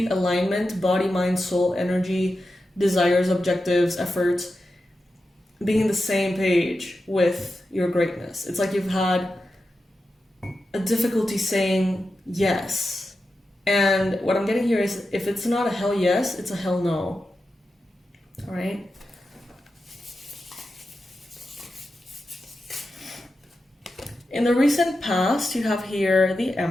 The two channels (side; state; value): both; normal; correlation 0.90